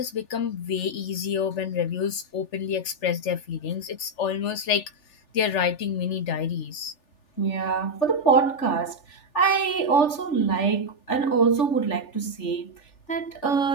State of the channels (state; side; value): late; right; 3.4 ms